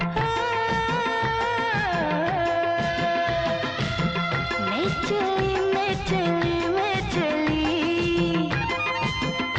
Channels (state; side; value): identical; both; correlation 1.00